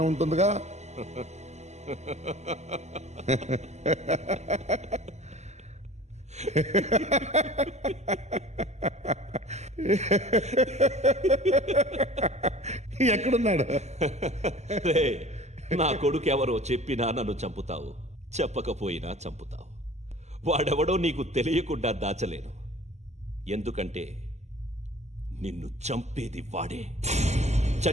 ఉంటుందిగా. ఎక్కడున్నాడు? రే, నా కొడుకు ఎవరో చెప్పినా నన్ను చంపుతావు, చెప్పకపోయినా చంపుతావు. వాడెవడో నీకు తెలియకుండా దాచలేను. ఎందుకంటే నిన్ను చంపేది వాడే.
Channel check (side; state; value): left; late; 0.33 ms